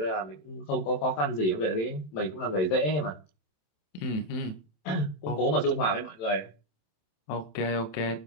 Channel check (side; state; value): right; late; 27 ms